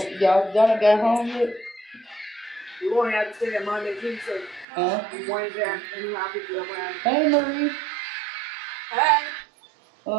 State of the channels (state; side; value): drops out; left; at 4.7 s